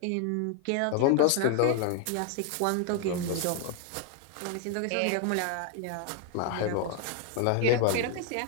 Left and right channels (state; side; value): different; both; correlation 0.00